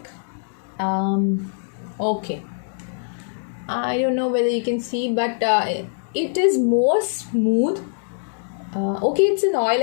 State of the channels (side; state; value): right; silent; digital silence